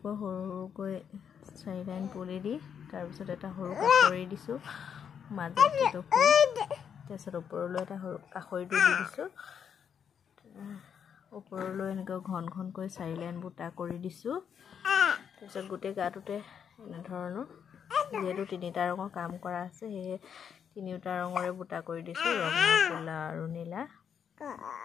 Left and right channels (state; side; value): quieter; right; 7.7 dB